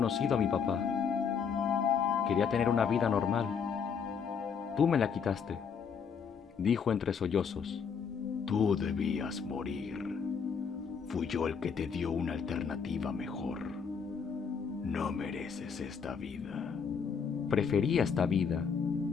a mi papá. Quería tener una vida normal. Tú me la quitaste, dijo entre sollozos. Tú debías morir. Fui yo el que te dio una alternativa mejor. No mereces esta vida. Prefería esta vida.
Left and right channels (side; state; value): right; quieter; 6.4 dB